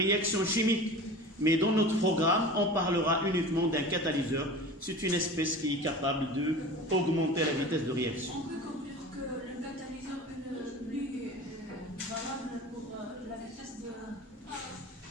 chimique. Mais dans notre programme, on parlera uniquement d'un catalyseur. C'est une espèce qui est capable d'augmenter la vitesse de réaction. On peut conclure que le catalyseur est plus valable pour la vitesse de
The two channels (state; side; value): normal; both; correlation 0.36